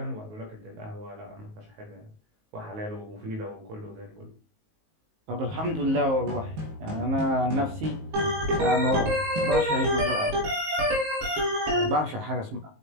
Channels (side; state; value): left; late; 19 ms